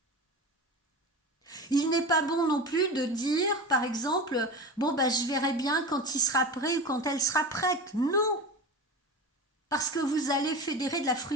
Il n'est pas bon non plus de dire, par exemple, bon je verrai bien quand il sera prêt ou quand elle sera prête. Non, parce que vous allez fédérer de la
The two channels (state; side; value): normal; both; correlation 0.27